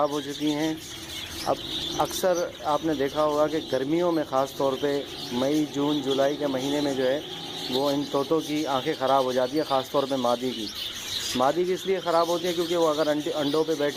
हो चुकी हैं। अब अक्सर आपने देखा होगा कि गर्मियों में ख़ास तौर पे मई जून जुलाई के महीने में जो है वो इन तोतों की आंखें ख़राब हो जाती है, ख़ास तौर पे मादी की इसलिए ख़राब होती है क्योंकि वो अगर अंडों पे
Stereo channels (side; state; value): both; identical; correlation 1.00